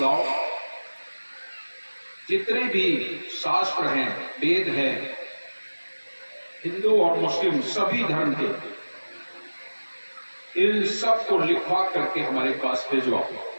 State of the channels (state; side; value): inverted; both; correlation -1.00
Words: जितने भी शास्त्र हैं, वेद हैं, हिंदू और मुस्लिम सभी धर्म के, इन सब को लिखवा करके हमारे पास भेजवाओ।